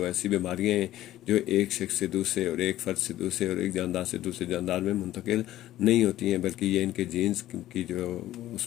ایسی بیماریاں ہیں جو ایک شخص سے دوسرے اور ایک فرد سے دوسرے اور ایک جاندار سے دوسرے جاندار میں منتقل نہیں ہوتی ہیں، بلکہ یہ ان کے جینز کی جو اس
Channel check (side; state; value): right; quieter; 14.2 dB